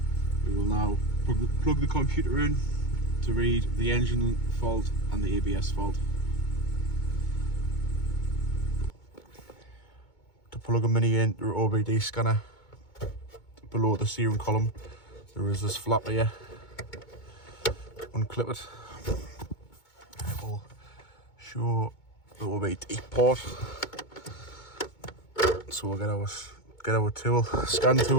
We will now plug the computer in to read the engine fault and the ABS fault. To plug a mini into an OBD scanner, below the steering column there is this flap here. Unclip it. It will show the OBD port. So we'll get our tool, scan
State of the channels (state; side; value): late; right; 2.2 ms